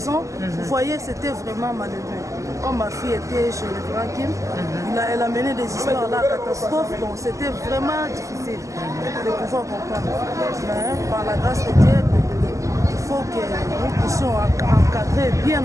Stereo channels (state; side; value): late; left; 0.16 ms